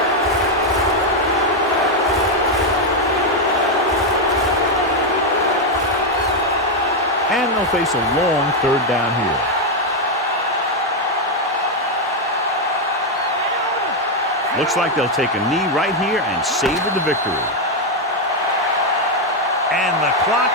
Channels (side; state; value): both; normal; correlation 0.02